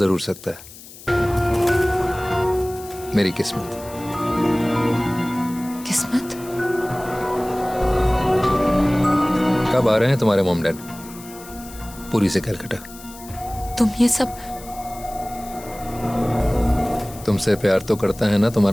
जरूर सकता है। मेरी किस्मत। किस्मत? कब आ रहे हैं तुम्हारे मॉम डैड? पूरी से कलकत्ता। तुम ये सब? तुमसे प्यार तो करता है ना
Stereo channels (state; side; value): noise; left; hiss, 18 dB below the sound